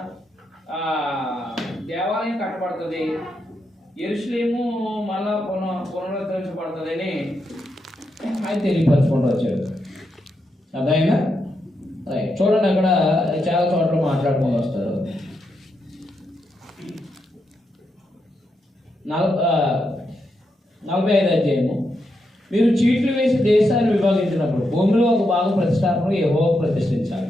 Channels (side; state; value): both; normal; correlation 0.83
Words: దేవాలయం కట్టబడుతుంది, యెరూషలేము మళ్ళా పునరుద్ధరించబడుతుందని ఆయన తెలియపరచుకుంటూ వచ్చాడు. అదైనా చూడండి, అక్కడ చాలా చోట్ల మాట్లాడుకొని వస్తారు. 45వ అధ్యాయము, మీరు చీట్లు వేసి దేశాన్ని విభాగించినప్పుడు భూమిలో ఒక భాగం ప్రతిష్టాపన యెహోవాకు ప్రతిష్ఠించాలి.